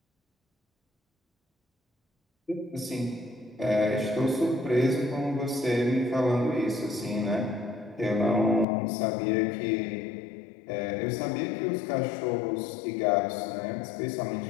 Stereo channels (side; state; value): right; drops out; at 8.7 s